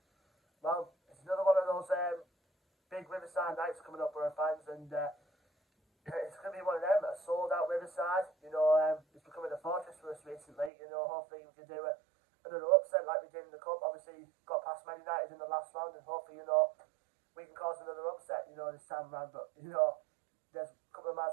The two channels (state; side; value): drops out; left; at 10.7 s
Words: Well, it's another one of those big Riverside nights coming up, Boro fans, and it's going to be one of them, a sold-out Riverside. It's becoming a fortress for us recently. Hopefully we can do another upset like we did in the Cup. Obviously, got past Man United in the last round, and hopefully, we can cause another upset, this time around. But, there's a couple of man's